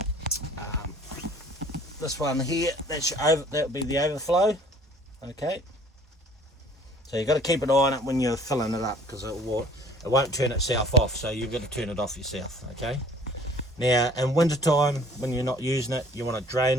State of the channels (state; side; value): normal; both; correlation 0.53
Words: This one here, that'll be the overflow. Okay, so you've got to keep an eye on it when you're filling it up, because it won't turn itself off, so you've got to turn it off yourself. Okay, now in winter time when you're not using it, you want to